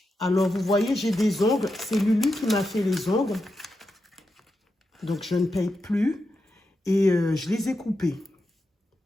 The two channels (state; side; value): normal; both; correlation 0.87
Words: Alors, vous voyez, j'ai des ongles. C'est Lulu qui m'a fait les ongles. Donc, je ne paye plus. Et je les ai coupés.